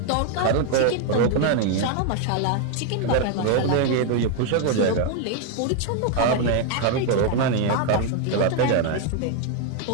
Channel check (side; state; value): both; different; correlation 0.00